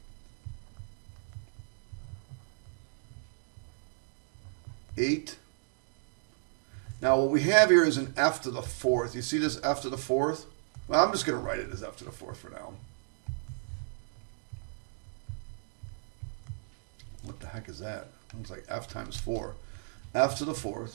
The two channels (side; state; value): left; silent; digital silence